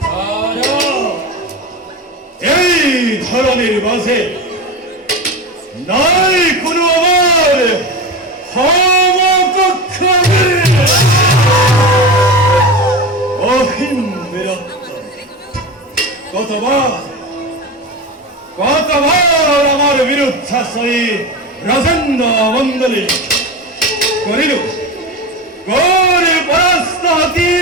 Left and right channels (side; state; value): both; normal; correlation 0.25